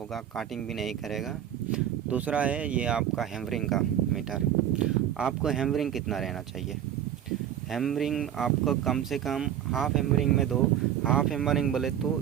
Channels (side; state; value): left; quieter; 10.3 dB